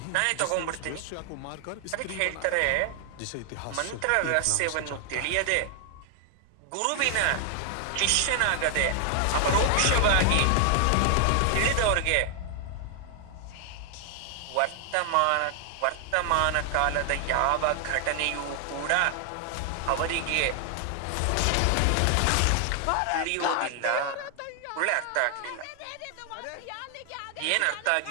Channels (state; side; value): different; both; correlation 0.00